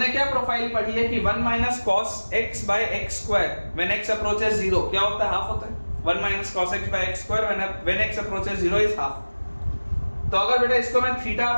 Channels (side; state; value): both; inverted; correlation -1.00